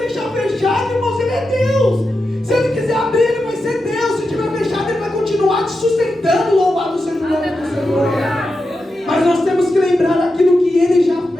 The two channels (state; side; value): normal; both; correlation 0.89